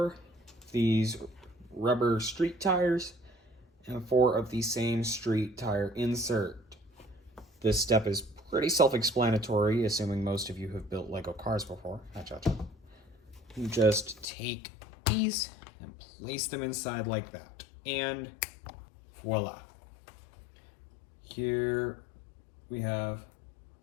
these rubber street tires and 4 of the same street tire insert. This step is pretty self-explanatory, assuming most of you have built Lego cars before. You just take these and place them inside like that. And voila. Here we have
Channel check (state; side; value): drops out; right; at 14.2 s